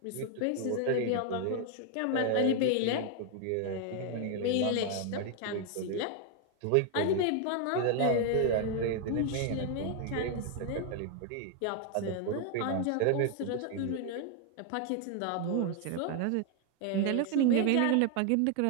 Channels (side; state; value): both; different; correlation 0.00